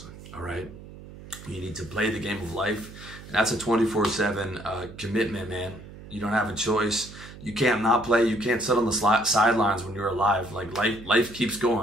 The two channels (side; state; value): right; noise; hum, 16 dB below the sound